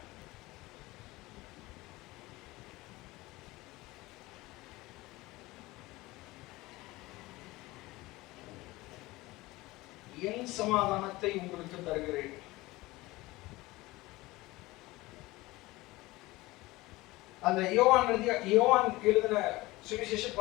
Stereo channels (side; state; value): right; quieter; 20.1 dB